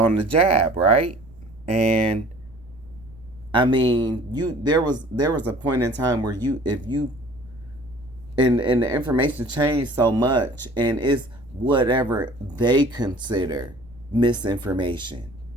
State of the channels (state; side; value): noise; right; rumble, 24 dB below the sound